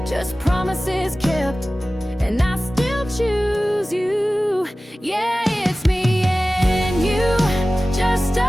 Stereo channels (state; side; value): normal; both; correlation 0.96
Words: just promises kept, and I still choose you. Yeah, it's me and you, just